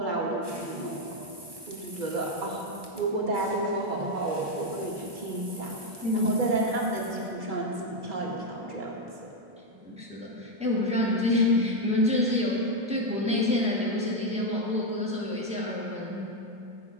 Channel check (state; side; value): late; left; 1.2 ms